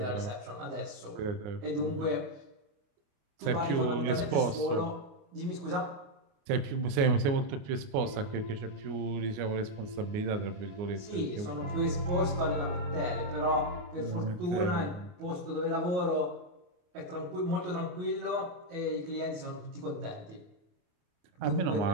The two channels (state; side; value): late; left; 28 ms